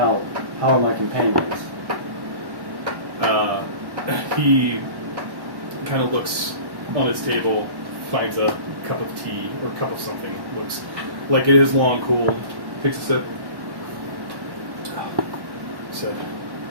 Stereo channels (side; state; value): left; late; 1.1 ms